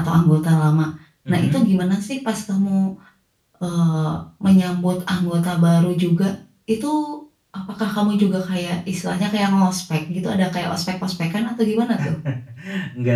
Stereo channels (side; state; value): both; identical; correlation 1.00